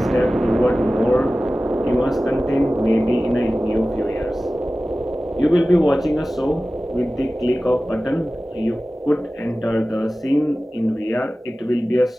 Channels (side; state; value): both; normal; correlation 0.96